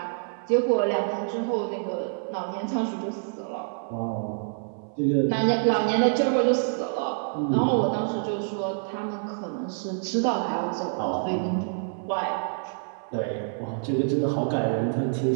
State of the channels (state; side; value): silent; left; 60 dB below the other